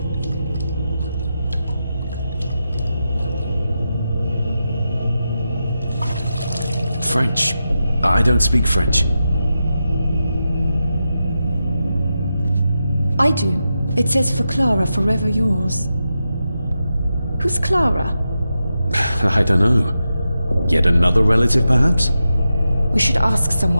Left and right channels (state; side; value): inverted; both; correlation -0.89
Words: French. I don't speak French. I do. It says for Clara, forever yours. Who's Clara? I don't know. Yet another relative, perhaps? We should ask